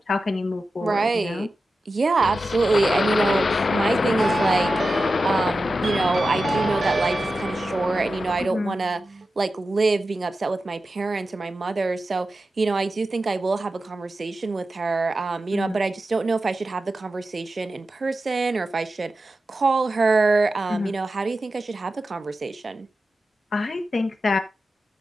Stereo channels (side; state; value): both; normal; correlation 0.92